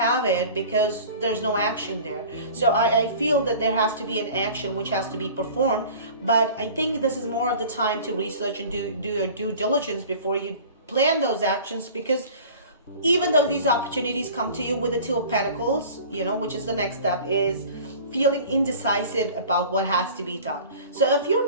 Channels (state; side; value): inverted; both; correlation -0.42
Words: it because there's no action there. So I feel that there has to be an action which has to be performed, but I think this is more of the time to research and do your due diligence before you plan those actions, because even though these opportunities come to you with the Two of Pentacles, which is the next step, is feeling indecisive about what has to be done. So if you're